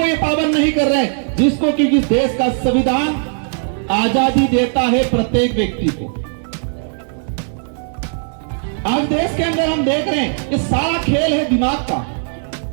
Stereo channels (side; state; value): left; silent; 68 dB below the other